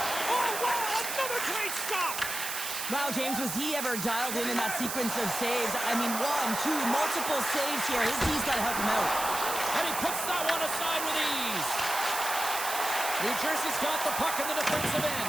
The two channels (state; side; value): noise; right; hiss, 4 dB below the sound